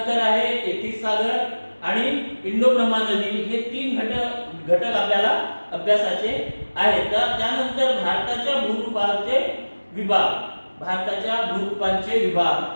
आहे 33 सागर आणि इंडो ब्रह्मा नदी हे 3 घटक आपल्याला अभ्यासाचे आहेत. तर त्यानंतर भारताच्या भूरूपांचे विभाग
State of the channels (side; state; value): both; inverted; correlation -1.00